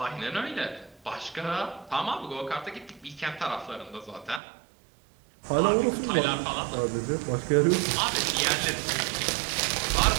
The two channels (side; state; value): left; drops out; at 4.4 s